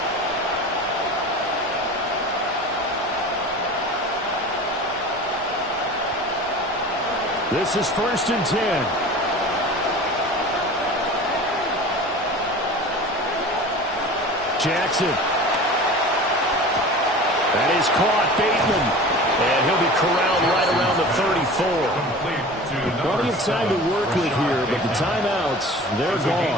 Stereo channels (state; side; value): normal; both; correlation 0.38